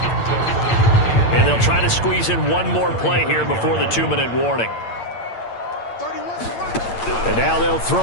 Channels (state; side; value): late; right; 8.7 ms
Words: And they'll try to squeeze in one more play here before the 2-minute warning. And now they'll